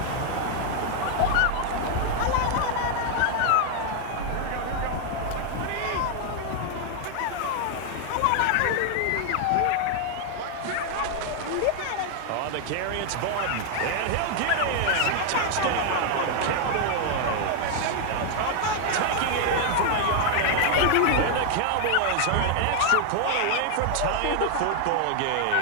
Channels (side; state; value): both; different; correlation 0.00